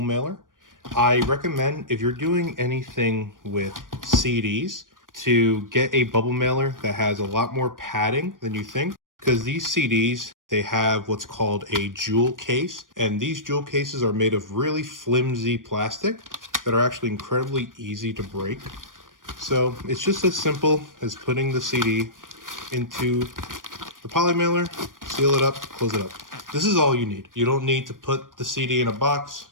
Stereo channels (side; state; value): left; late; 0.90 ms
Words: I recommend if you're doing anything with CDs to get a bubble mailer that has a lot more padding than you think, because these CDs, they have what's called a jewel case, and these jewel cases are made of really flimsy plastic that are actually incredibly easy to break. So it's just as simple as putting the CD into the poly mailer, seal it up, close it up. This is all you need. You don't need to put the CD in a box.